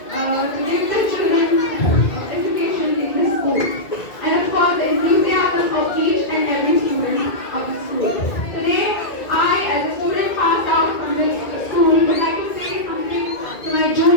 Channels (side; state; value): right; late; 2.2 ms